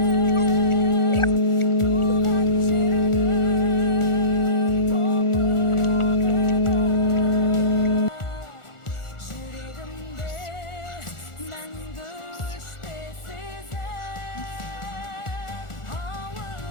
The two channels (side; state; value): right; late; 1.4 ms